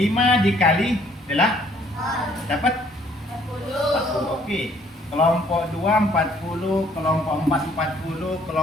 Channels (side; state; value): both; normal; correlation 0.62